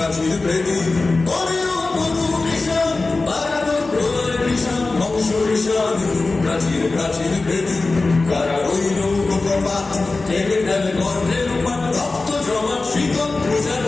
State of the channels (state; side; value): quieter; right; 3.5 dB